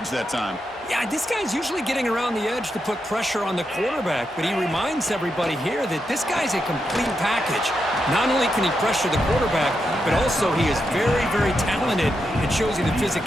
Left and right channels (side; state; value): both; normal; correlation 0.85